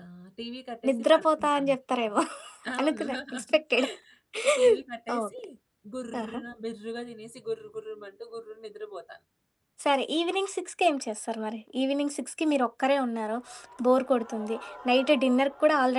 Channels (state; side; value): identical; both; correlation 1.00